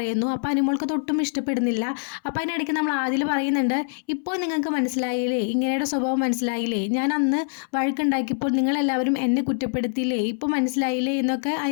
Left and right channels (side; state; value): right; silent; 62 dB below the other